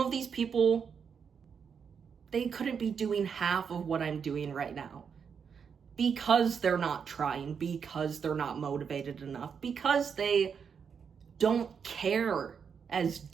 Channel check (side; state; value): left; quieter; 6.7 dB